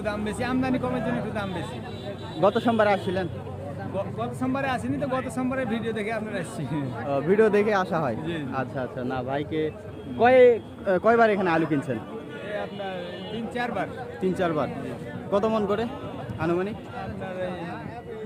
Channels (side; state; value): both; identical; correlation 1.00